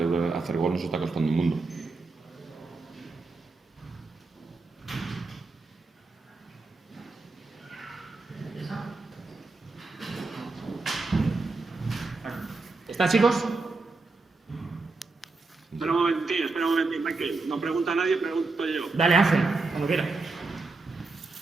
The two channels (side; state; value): left; quieter; 3.7 dB